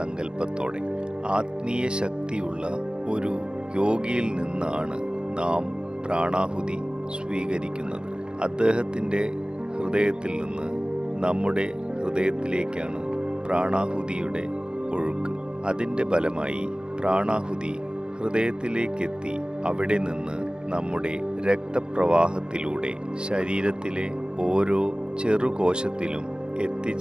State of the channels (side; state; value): left; late; 0.049 ms